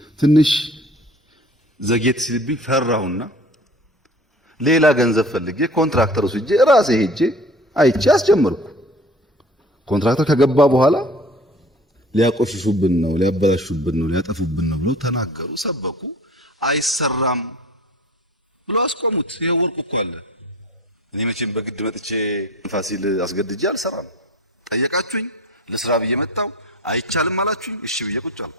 ትንሽ ዘጌት ሲልብኝ ፈራሁና ሌላ ገንዘብ ፈልጌ ኮንትራክተር ወስጄ ራሴ ሄጄ አይቼ አስጀመርኩ። ኮንትራክተር ከገባ በኋላ ሊያቆሽሹብን ነው፣ ሊያበላሹብን ነው፣ ሊያጠፉብን ነው ብለው ተናገሩ፣ ሰበኩ። አይሰራም ብለው አስቆሙት። ይሄው ወርቁ እኮ አለ። እኔ መቼም በግድ መጥቼ ፋሲል አስገድጄ አልሰራም። ጠየቃችሁኝ፣ ለስራ ብዬ መጣሁ። አይቻልም አላችሁኝ፣ እሺ ብዬ ቁጭ አልኩ።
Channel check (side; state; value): both; normal; correlation 0.43